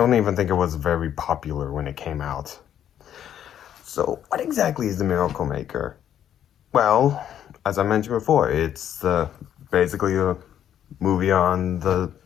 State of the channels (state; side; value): quieter; right; 10.1 dB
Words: even think it was very popular when it came out. So, what exactly is The Miracle Maker? Well, as I mentioned before, it's basically a movie on the